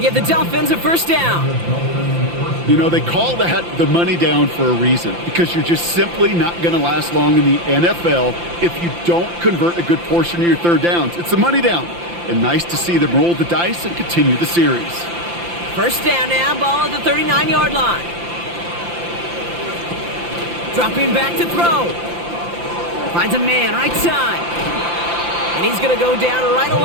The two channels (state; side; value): late; left; 5.8 ms